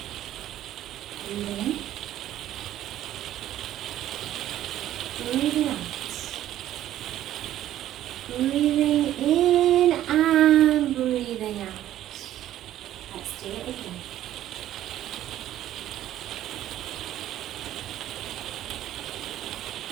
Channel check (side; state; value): left; quieter; 12.7 dB